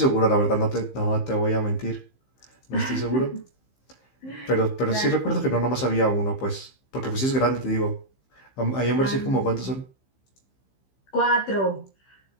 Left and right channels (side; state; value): right; late; 15 ms